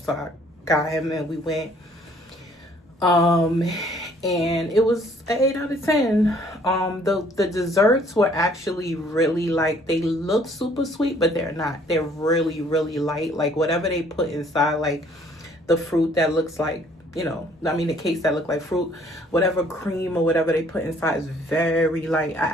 So I got him and we went. And it was an 8 out of 10. The desserts were actually really, like, they look super sweet, but they're not. They're really, really light. Like, whatever they put inside, like the fruit that looks like, the cakes that look like fruit, whatever cream or whatever they put inside is very light.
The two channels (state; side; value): normal; both; correlation 0.60